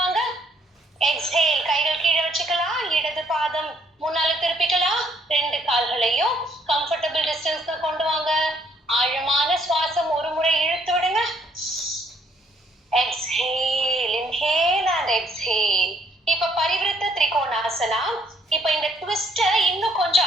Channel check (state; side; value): normal; both; correlation 0.66